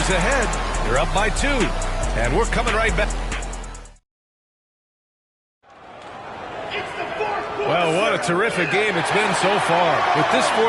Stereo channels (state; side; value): identical; both; correlation 1.00